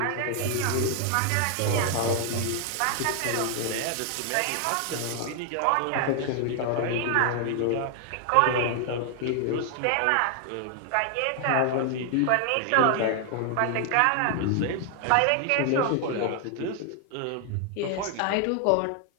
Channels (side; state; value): both; different; correlation 0.00